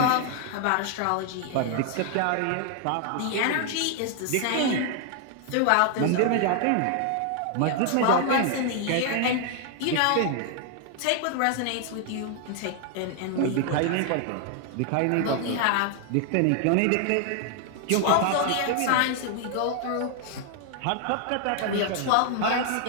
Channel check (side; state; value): both; different; correlation 0.00